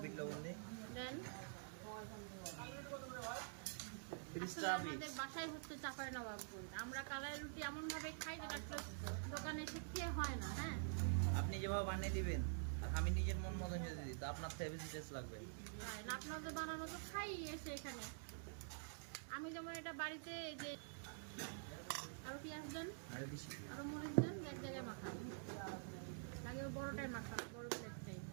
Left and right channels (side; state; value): left; silent; digital silence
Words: বিট লবণ দিই। দেন। তিরিশটা আমাদের বাসায় হচ্ছে চাপাই নবাবগঞ্জ। আমরা কালাই রুটি এমন ভাবে খাই যেটা আসলে দোকানে এসে খেয়ে হয় না। হ্যাঁ, আপনি যেভাবে বানিয়ে দিবেন আর আমি নিজের মন মতো যদি দিই তো আপনার থেকে বেশি টেস্ট লাগবে। না, আপনাদের বানানো তো খাই এসে এখানে। আমি যেমন এটা বাড়িতে যে আরো পেঁয়াজ দেন, আরো বেশি আরো মরিচ দেন, এক জায়গায় মাখান। লাগে বড়টাই মাখান, বড় প্লেটটাই।